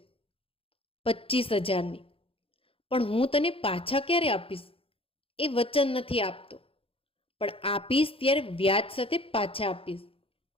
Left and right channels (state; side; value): late; right; 0.27 ms